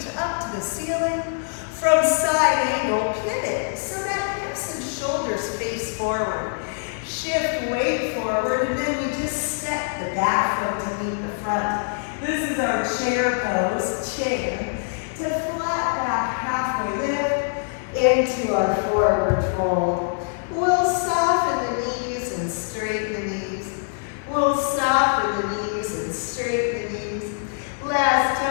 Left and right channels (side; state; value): right; silent; 56 dB below the other